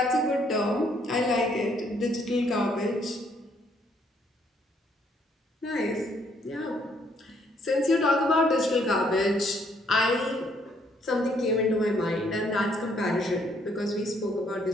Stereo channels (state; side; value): normal; both; correlation 0.68